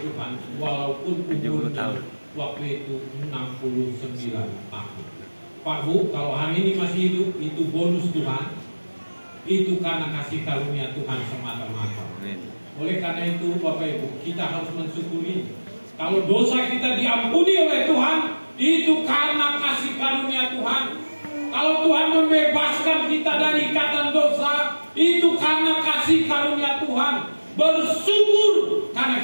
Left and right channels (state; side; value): inverted; both; correlation -1.00